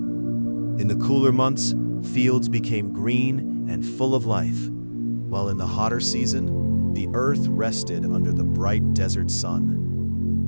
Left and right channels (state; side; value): inverted; both; correlation -1.00